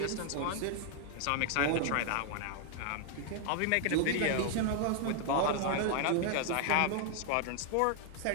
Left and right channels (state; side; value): different; both; correlation 0.00